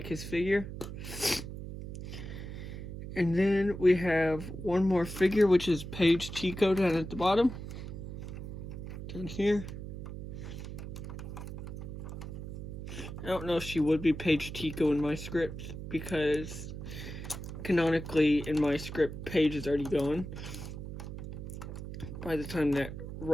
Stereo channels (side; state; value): right; noise; hum, 8 dB below the sound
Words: his figure. And then we have one more figure, which is Paige Tico down at the bottom. Down here. I don't know if she would be Paige Tico in my script, because canonically in my script, Paige is already gone by the time that